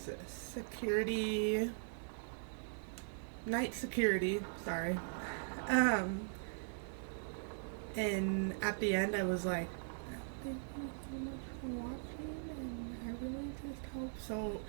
night security, sorry. And at the end, I was like, thank you so much for watching, and I really just hope so.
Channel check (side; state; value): left; silent; digital silence